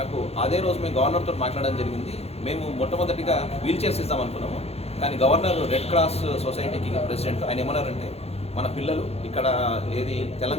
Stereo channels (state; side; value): late; right; 0.30 ms